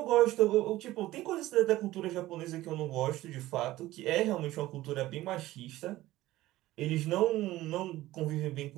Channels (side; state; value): left; quieter; 16.4 dB